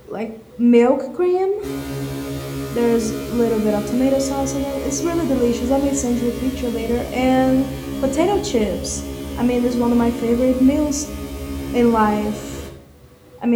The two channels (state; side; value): identical; both; correlation 1.00